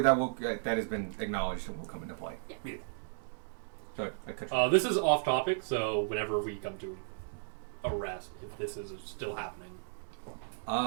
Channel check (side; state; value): left; silent; 55 dB below the other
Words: that has been acknowledged and will come into play. Yeah. Sorry, I cut you. This is off topic, so whenever we come to arrest, if this is still happening.